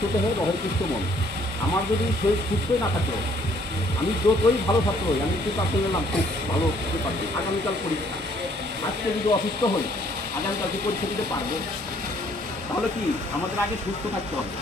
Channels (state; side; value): normal; both; correlation 0.63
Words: দেহে রহে সুস্থ মন। আমার যদি শরীর সুস্থই না থাকলো, আমি যতই ভালো ছাত্র হই, আমি প্রিপারেশন নিলাম খুব ভালো প্রিপারেশন, আগামীকাল পরীক্ষা, আজকে যদি অসুস্থ হই আগামীকালকে পরীক্ষা দিতে পারবো? তাহলে কি আমাদের আগে সুস্থ থাকতে হবে।